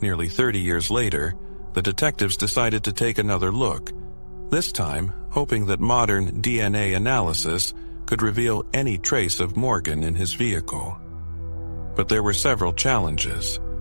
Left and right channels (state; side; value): inverted; both; correlation -1.00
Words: Nearly 30 years later, the detectives decided to take another look, this time hoping that modern DNA analysis could reveal any trace of Morgan in his vehicle. But there were several challenges.